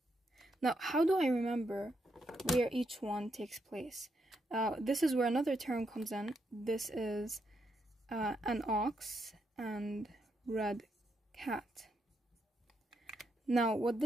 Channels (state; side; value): normal; both; correlation 0.80